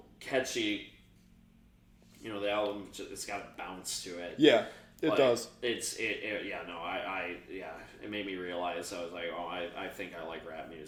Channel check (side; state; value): both; identical; correlation 1.00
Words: catchy. You know, the album, it's got a bounce to it. Yeah. It does. It made me realize I was like, oh, I think I like rap